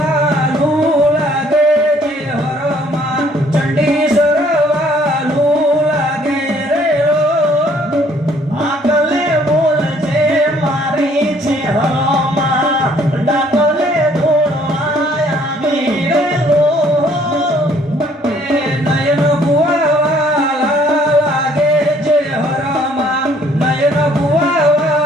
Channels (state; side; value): normal; both; correlation 0.61